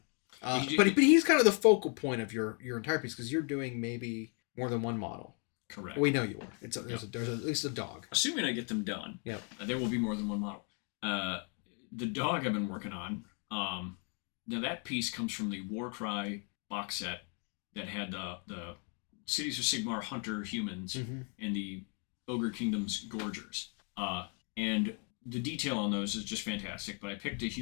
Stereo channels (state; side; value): quieter; right; 38.6 dB